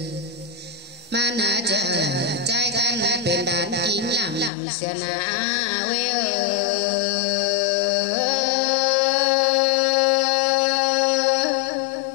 mà nà chờ trai khăn bên đàn kín làm xưa nà quê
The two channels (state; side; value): drops out; right; at 4.5 s